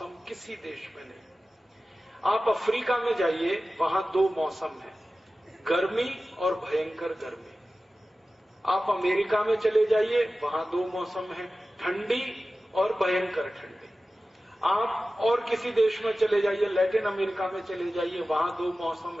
किसी देश में नहीं। आप अफ्रीका में जाइए, वहां 2 मौसम है, गर्मी और भयंकर गर्मी। आप अमेरिका में चले जाइए, वहां 2 मौसम है, ठंडी और भयंकर ठंडी। आप और किसी देश में चले जाइए, लैटिन अमेरिका में चले जाइए, वहां 2 मौसम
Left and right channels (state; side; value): normal; both; correlation 0.95